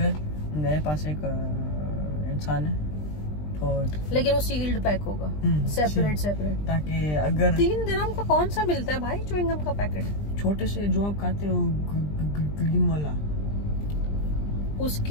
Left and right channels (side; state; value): right; late; 20 ms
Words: मेरे पास एक इंसान है, तो लेकिन वो सील्ड पैक होगा, सेपरेट, ताकि अगर 3 dirham का कौन सा मिलता है भाई च्युइंग गम का पैकेट? छोटे से जो आप खाते हो ग्रीन वाला,